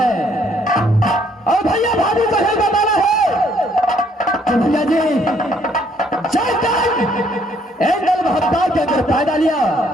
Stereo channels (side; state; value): both; normal; correlation 0.66